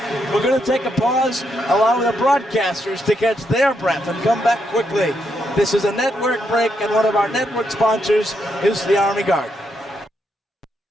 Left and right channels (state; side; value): normal; both; correlation 0.79